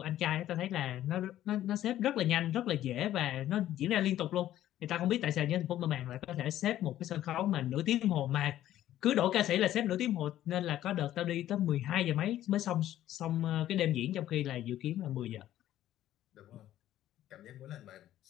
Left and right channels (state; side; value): quieter; right; 12.9 dB